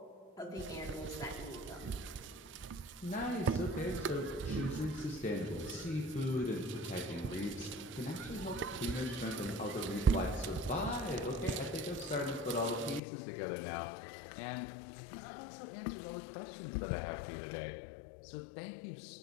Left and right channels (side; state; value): right; drops out; at 13.0 s